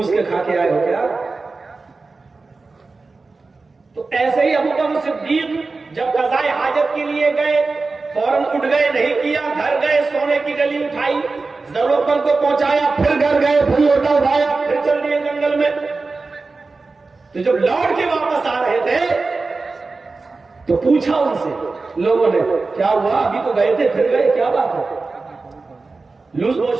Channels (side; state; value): left; quieter; 3.9 dB